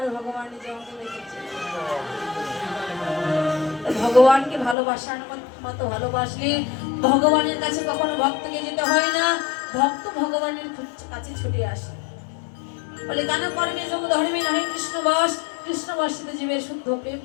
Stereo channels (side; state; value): right; drops out; at 4.8 s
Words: ভগবান নিজে অঙ্গে রেখেছে। ভগবানকে ভালোবাসার মতো ভালোবাসলে ভগবানের কাছে কখনো ভক্তকে যেতে হয় না, ভক্ত ভগবানের কাছে ছুটে আসে। বলে কেন কর্মে যোগ ধর্মে নয় কৃষ্ণ বস, কৃষ্ণ বসিত জীবের শুদ্ধ প্রেম